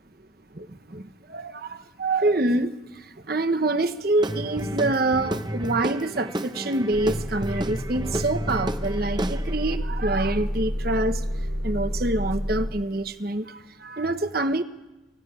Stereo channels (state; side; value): normal; both; correlation 0.49